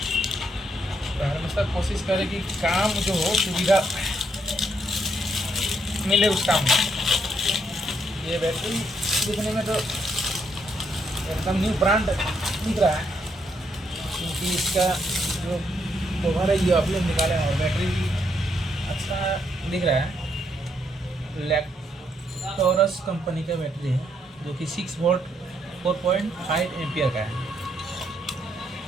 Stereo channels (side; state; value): both; normal; correlation 0.75